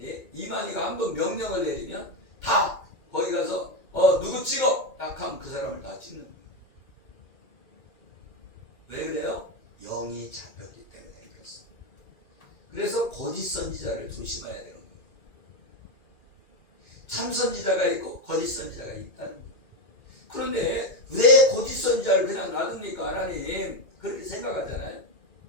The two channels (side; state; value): right; late; 2.2 ms